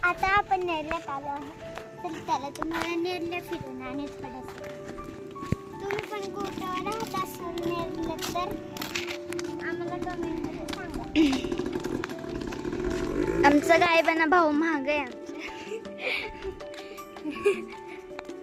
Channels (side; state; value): both; identical; correlation 1.00